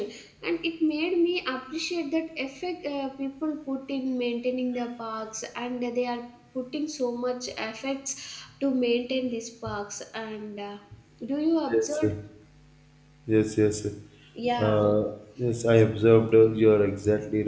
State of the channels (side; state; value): both; identical; correlation 1.00